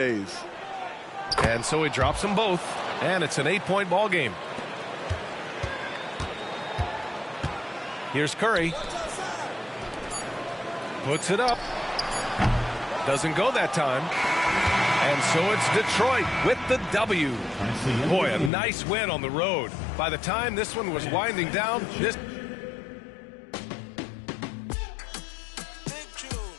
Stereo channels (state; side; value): drops out; right; at 18.5 s